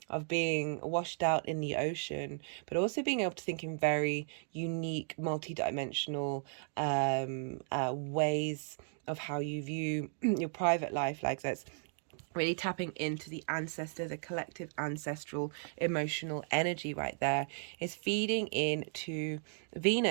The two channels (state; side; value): silent; left; 54 dB below the other